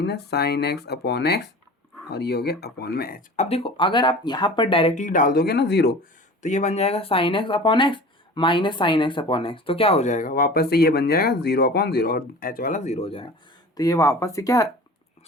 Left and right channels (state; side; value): normal; both; correlation 0.39